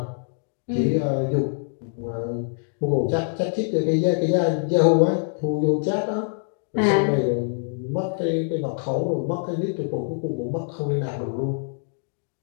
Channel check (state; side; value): silent; right; digital silence